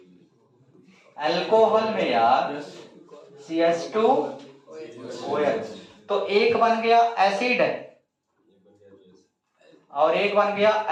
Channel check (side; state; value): both; identical; correlation 1.00